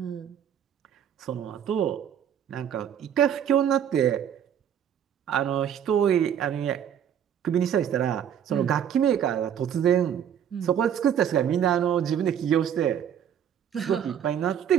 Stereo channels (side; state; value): left; quieter; 9.2 dB